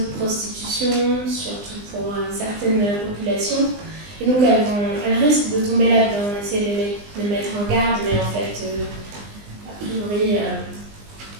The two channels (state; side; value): late; left; 20 ms